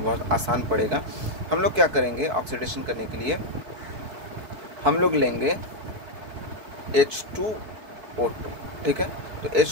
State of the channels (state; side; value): late; left; 4.6 ms